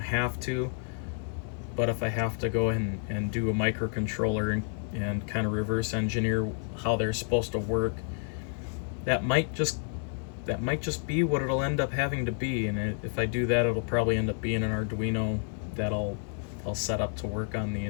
to, but if I have to go and do a microcontroller and kind of reverse engineer how they're supposed to work, that might just be what it'll end up having to be. And if I do that, it'll probably end up being an Arduino that I'll set up to work on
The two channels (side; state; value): right; silent; 56 dB below the other